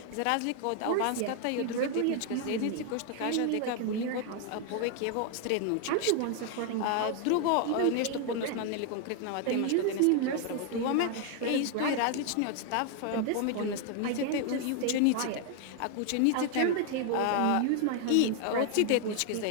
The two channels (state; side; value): different; both; correlation 0.01